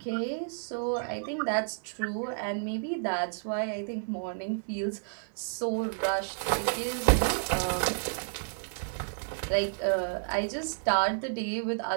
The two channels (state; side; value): silent; left; digital silence